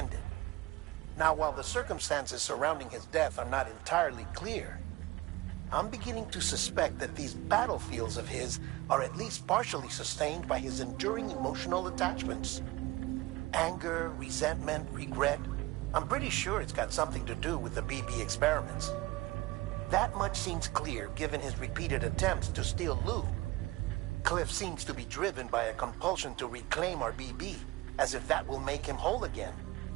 Now, while the circumstances surrounding his death are not entirely clear, I'm beginning to suspect that these battlefields of his are at least partially sustained by his enduring emotional attachments. Anger, resentment, regret. I'm pretty sure it's got something to do with the BB experiments. That much seems clear given his repeated attempts to steal Lou. Cliff seems to be driven by a compulsion to reclaim our BB, as if that will make him whole again.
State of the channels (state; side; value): quieter; left; 20.0 dB